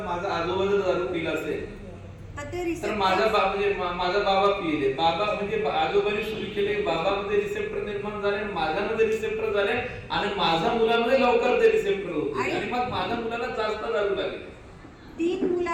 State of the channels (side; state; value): both; identical; correlation 1.00